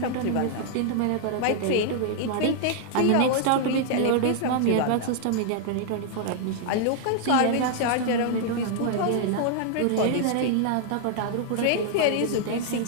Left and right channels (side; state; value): both; different; correlation -0.01